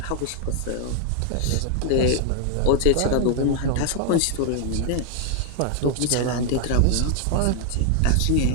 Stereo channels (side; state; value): both; different; correlation 0.00